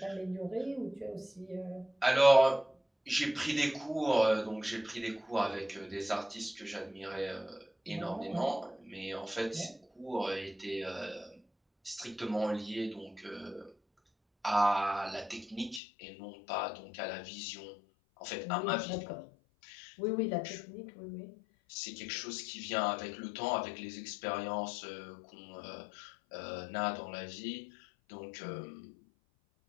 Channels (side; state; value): right; drops out; at 15.8 s